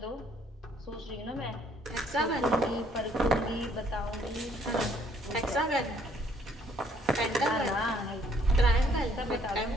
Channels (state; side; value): normal; both; correlation 0.64